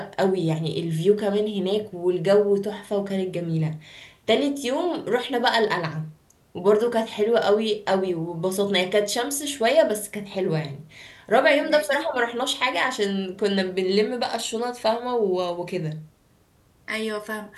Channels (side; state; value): both; identical; correlation 1.00